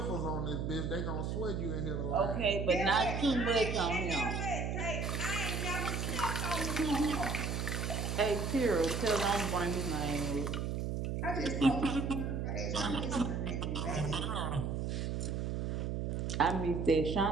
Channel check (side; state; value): right; noise; hum, 1 dB below the sound